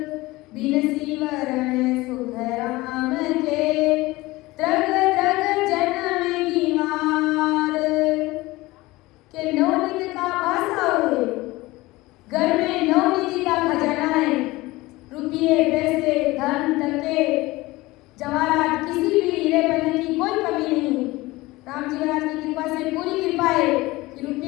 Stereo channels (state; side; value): quieter; right; 20.1 dB